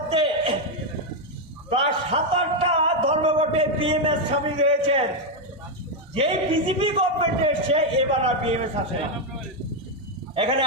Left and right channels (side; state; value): both; normal; correlation 0.03